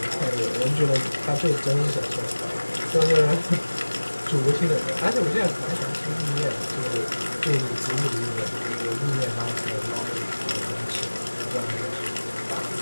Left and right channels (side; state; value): both; inverted; correlation -1.00